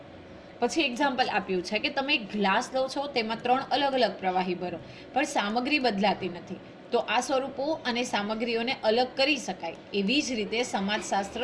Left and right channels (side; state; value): both; identical; correlation 1.00